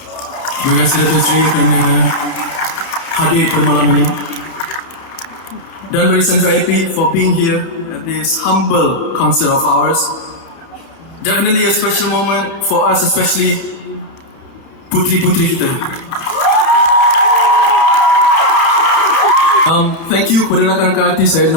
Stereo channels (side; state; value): right; late; 31 ms